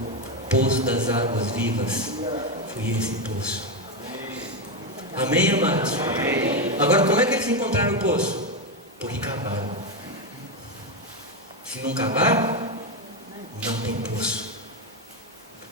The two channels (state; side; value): normal; both; correlation 0.09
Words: poço das águas vivas. Foi esse poço. Amém, amados? Amém. Agora, como é que eles encontraram o poço? Porque cavaram. Se não cavar, não tem poço.